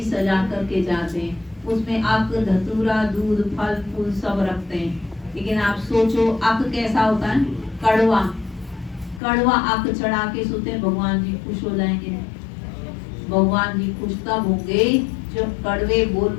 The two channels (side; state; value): right; drops out; at 9.2 s